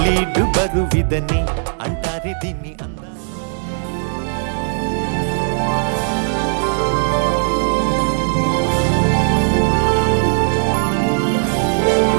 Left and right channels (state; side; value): silent; left; digital silence